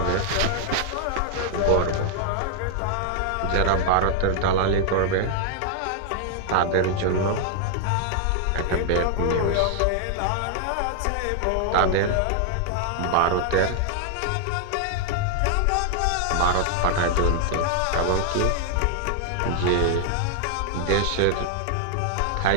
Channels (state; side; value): different; both; correlation -0.01